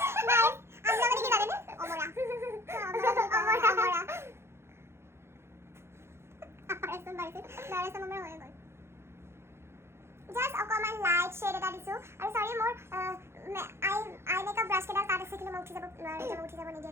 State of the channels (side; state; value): left; late; 0.12 ms